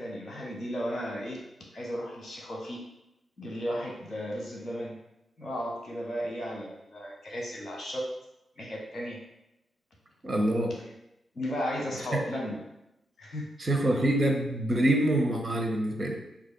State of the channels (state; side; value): normal; both; correlation 0.81